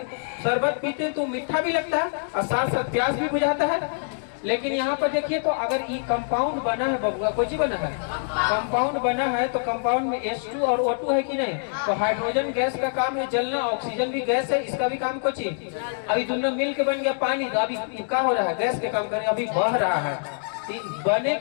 शरबत पीते हैं तो मीठा भी लगता है और साथ साथ प्यास भी बुझाता है। लेकिन यहाँ पर देखिए तो अगर ये कंपाउंड बना है बबुआ, कुछ बना है कंपाउंड बना है, तो कंपाउंड में H2 और O2 है कि नहीं। तो हाइड्रोजन गैस का काम है जलना, ऑक्सीजन भी गैस है, इसका भी काम कुछ है। अभी दोनों मिल के बन गया पानी, तो अभी क्या हो रहा है, गैस के काम करे, अभी बह रहा है। बने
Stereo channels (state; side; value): silent; right; digital silence